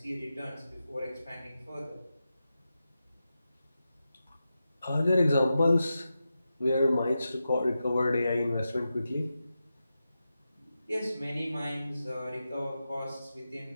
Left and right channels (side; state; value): both; inverted; correlation -0.91